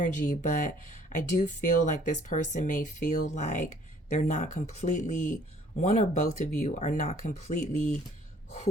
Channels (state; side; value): normal; both; correlation 0.57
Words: but I do feel like this person may feel like they're not completely, one or both of you are not completely